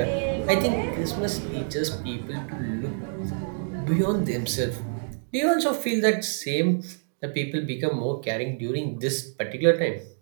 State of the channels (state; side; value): silent; left; digital silence